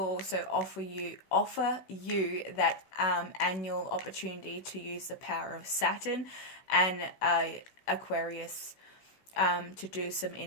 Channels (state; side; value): late; right; 16 ms